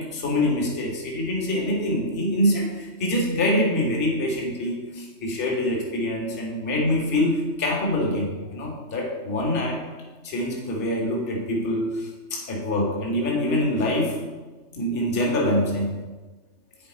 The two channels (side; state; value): left; late; 2.7 ms